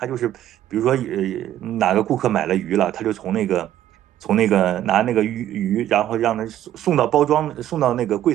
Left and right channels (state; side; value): quieter; left; 12.2 dB